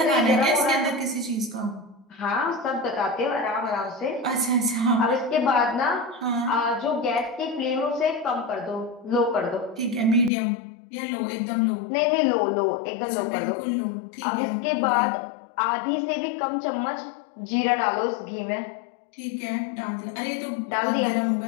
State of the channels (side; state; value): right; drops out; at 10.3 s